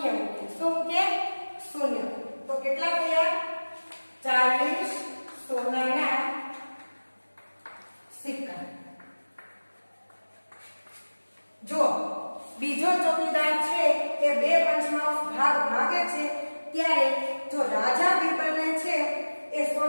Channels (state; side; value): inverted; both; correlation -1.00